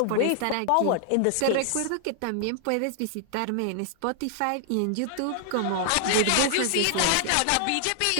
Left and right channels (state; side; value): different; both; correlation 0.00